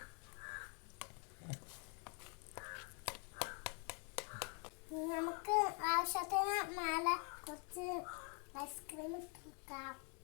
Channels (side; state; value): right; quieter; 37.5 dB